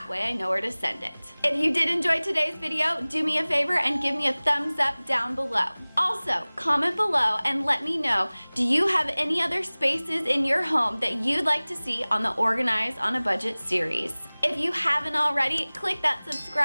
way I know where to send it. If you did enjoy today's video, do me a favor and give me a thumbs up down below. Also, comment below and let me know, do you have any other spaces in your home that you'd like to see on the Organize on a Budget series? If you haven't already, click that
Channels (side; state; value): both; inverted; correlation -1.00